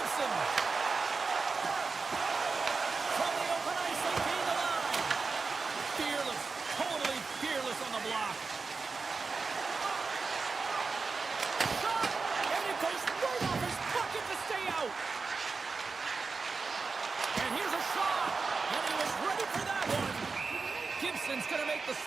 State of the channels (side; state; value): left; quieter; 4.4 dB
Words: From the open ice, they gain the line. Fearless, totally fearless on the block. Shot, and it goes right off his bucket to stay out. And here's a shot, and he was ready for that one. Gibson's going to make the